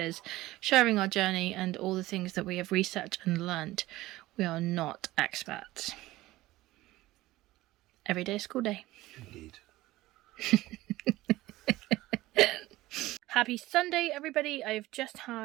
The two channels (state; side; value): quieter; left; 17.5 dB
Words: sharing our journey and all the things that we have researched and learnt. We are not experts. Every day is school day. Indeed. Happy Sunday, everybody. I've just